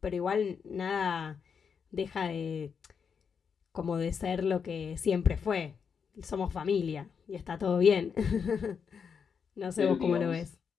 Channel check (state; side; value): quieter; right; 6.4 dB